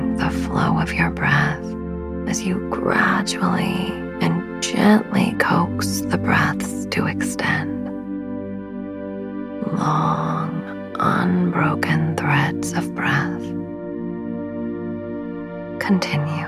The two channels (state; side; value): identical; both; correlation 1.00